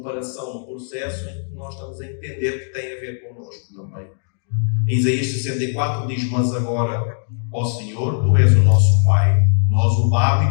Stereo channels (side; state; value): right; silent; digital silence